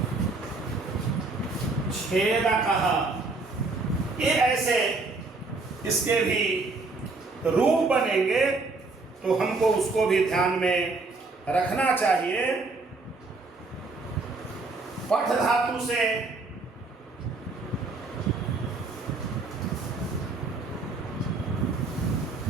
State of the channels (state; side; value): quieter; left; 3.6 dB